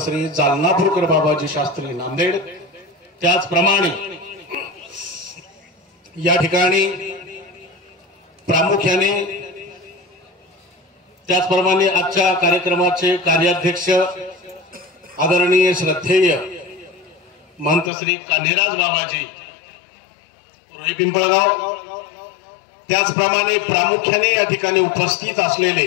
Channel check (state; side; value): drops out; right; at 17.9 s